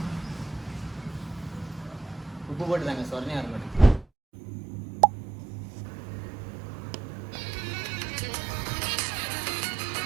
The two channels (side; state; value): left; drops out; at 4.0 s